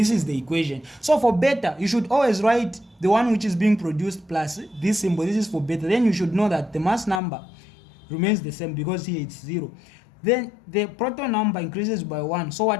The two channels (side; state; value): right; drops out; at 7.2 s